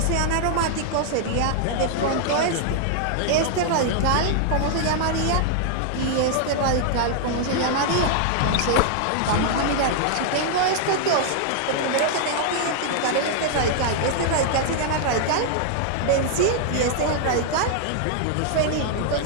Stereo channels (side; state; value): both; different; correlation -0.01